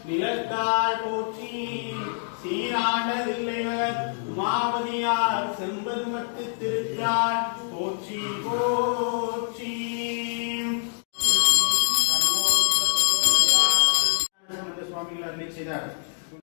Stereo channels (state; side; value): silent; right; digital silence